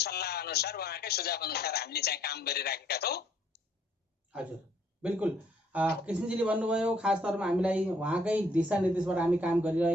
अनुसार, उहाँकै सुझाव अनुसार हामीले चाहिँ काम गरिराखेका छौँ। हजुर, बिल्कुल। कृष्णजीले भन्नुभयो खास तौरमा हामीलाई उहाँकै दिशानिर्देशबाट हामी काम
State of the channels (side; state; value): both; normal; correlation 0.66